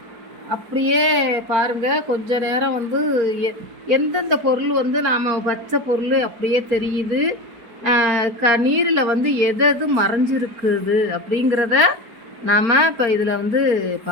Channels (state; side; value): late; left; 4.3 ms